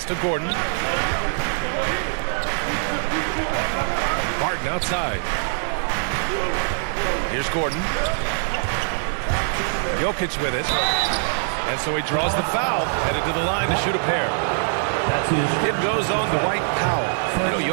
to Gordon. Barton outside. Here's Gordon. Jokic with it. And so he draws the foul, headed to the line to shoot a pair. It goes on Dwight Powell. You know,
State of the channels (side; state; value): left; silent; digital silence